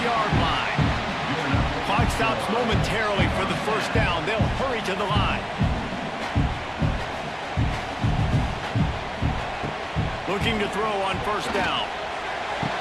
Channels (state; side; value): identical; both; correlation 1.00